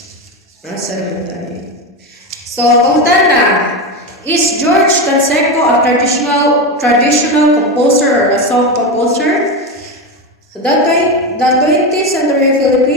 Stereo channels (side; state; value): both; normal; correlation 0.16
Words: Nasa naman tayo. So, punta na. Is George Canseco a traditional composer or a song composer? The 20th century